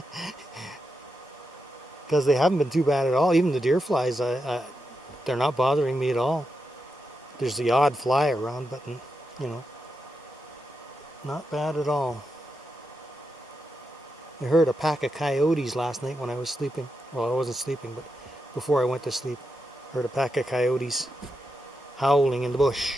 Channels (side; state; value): both; normal; correlation 0.86